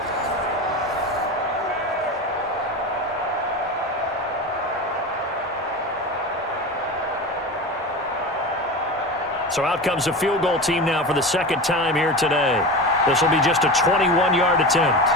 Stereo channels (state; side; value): normal; both; correlation 0.27